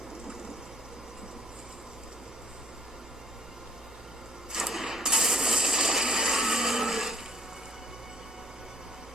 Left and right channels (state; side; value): normal; both; correlation 0.60